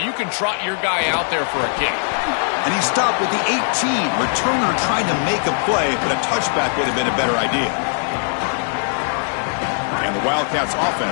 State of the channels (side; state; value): right; silent; 66 dB below the other